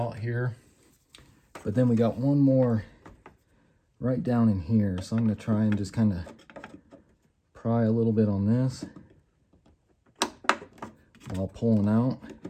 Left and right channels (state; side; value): identical; both; correlation 1.00